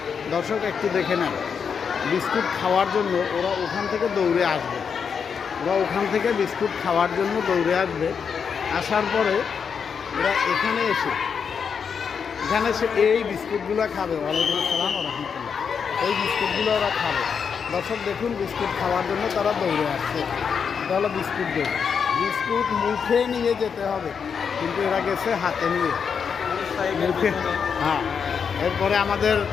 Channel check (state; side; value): quieter; right; 6.5 dB